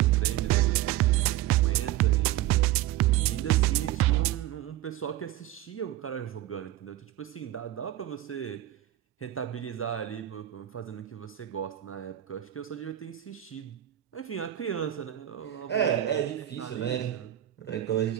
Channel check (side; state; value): left; quieter; 13.7 dB